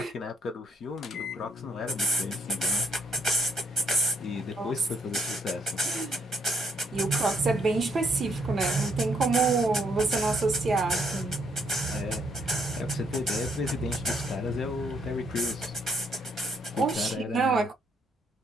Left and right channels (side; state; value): both; normal; correlation 0.71